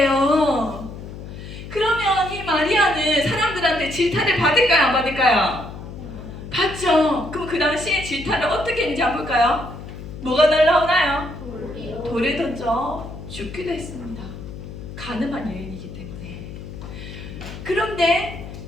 마리아는 사람들한테 질타를 받을까요? 안 받을까요? 받죠. 그럼 그 당시에 질타를 어떻게 했는지 한번 볼까요? 뭐가 날라오나요? 돌을 던져 죽기도 했습니다. 가늠한 여인이기 때문에. 그런데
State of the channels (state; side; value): noise; left; hum, 11 dB below the sound